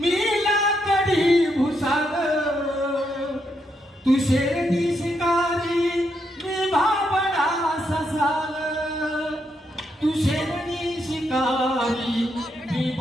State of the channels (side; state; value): both; normal; correlation 0.79